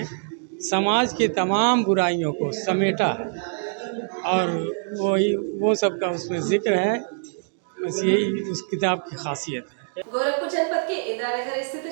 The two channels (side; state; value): left; silent; digital silence